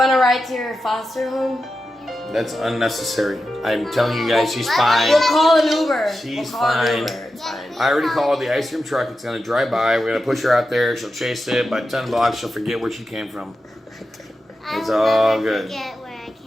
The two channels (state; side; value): normal; both; correlation 0.91